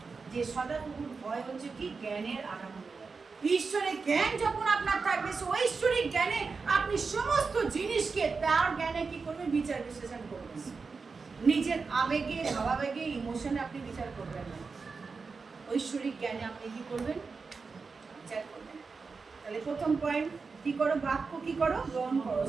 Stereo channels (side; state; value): left; quieter; 4.7 dB